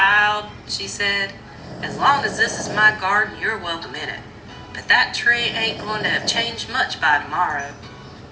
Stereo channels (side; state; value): both; identical; correlation 1.00